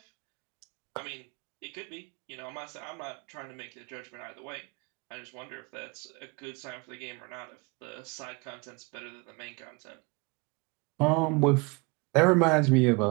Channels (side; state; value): left; quieter; 28.6 dB